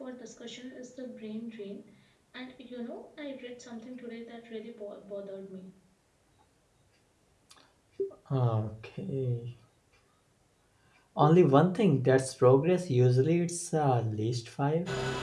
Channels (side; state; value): both; identical; correlation 1.00